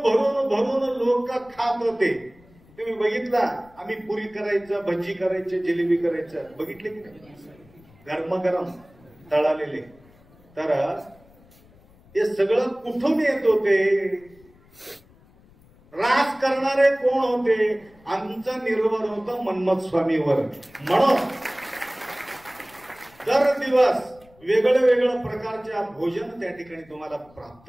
भरून भरून लोक खात होते. तुम्ही बघितला, आम्ही पुरी करायचं, भजी करायचं, जिलेबी करायचं, बघितले की नाही? गरमागरम तळालेले. तर हे सगळं कुठून येत होते? राज करणारे कोण होते? आमचा निर्भर होता मन्मथ स्वामीवर. म्हणून दर दिवस वेगळं वेगळं प्रकारच्या भोजन त्या ठिकाणी तुम्हाला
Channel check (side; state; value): left; noise; rumble, 28 dB below the sound